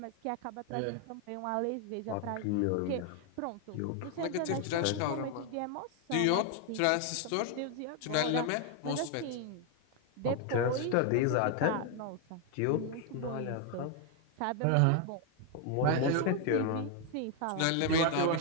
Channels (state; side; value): different; both; correlation 0.01